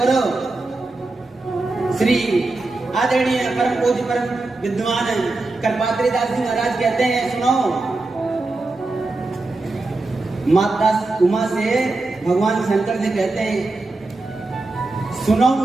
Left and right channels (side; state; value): left; quieter; 3.2 dB